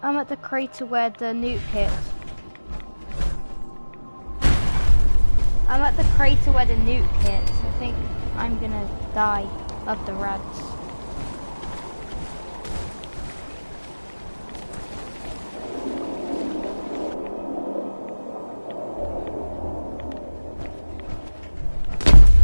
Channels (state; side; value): inverted; both; correlation -1.00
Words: the crater where the nuke hit. I'm at the crater where the nuke hit. I think I'm gonna die of the rads.